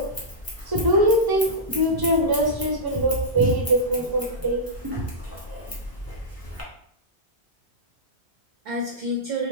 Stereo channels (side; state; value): both; normal; correlation -0.12